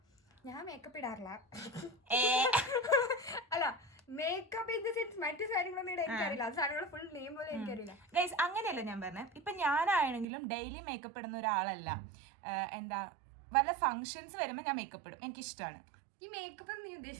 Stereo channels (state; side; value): drops out; left; at 10.2 s